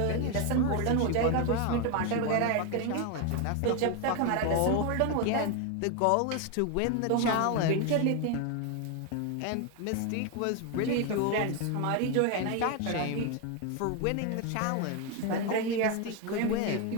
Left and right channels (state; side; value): different; both; correlation 0.01